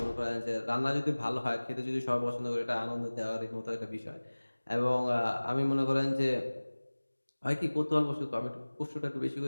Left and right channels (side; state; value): both; inverted; correlation -1.00